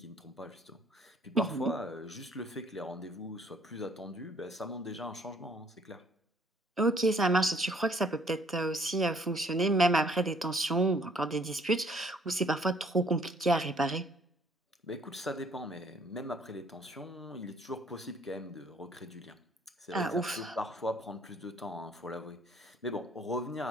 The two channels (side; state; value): both; normal; correlation 0.61